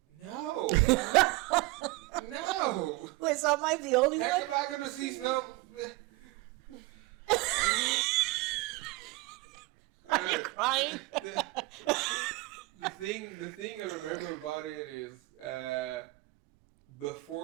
No. No. Wait, so am I the only Heck, one? am I gonna see snow? Crying? The thing I remember about it is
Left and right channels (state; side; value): quieter; left; 22.3 dB